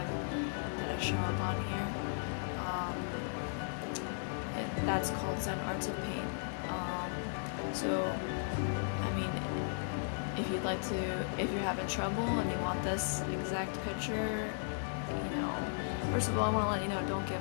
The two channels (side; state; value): right; silent; digital silence